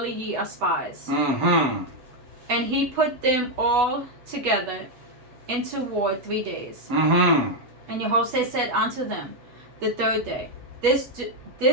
ye are spies. And he put them all together into ward 3 days. And Jehoshaphat said unto them the third day, This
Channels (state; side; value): late; left; 8.1 ms